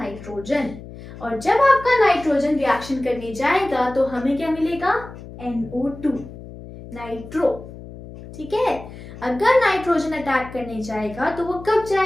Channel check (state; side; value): noise; left; hum, 15 dB below the sound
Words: और जब आपका नाइट्रोजन रिएक्शन करने जाएगा तो हमें क्या मिलेगा? NO2, nitro. ठीक है, अगर नाइट्रोजन अटैक करने जाएगा तो वो कब